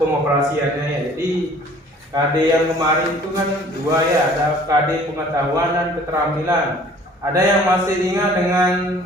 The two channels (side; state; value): both; normal; correlation 0.52